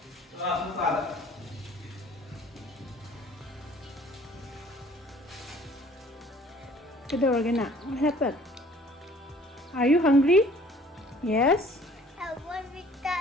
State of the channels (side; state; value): both; normal; correlation 0.54